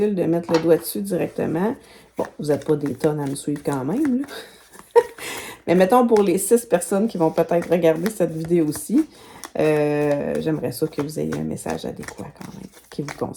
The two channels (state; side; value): identical; both; correlation 1.00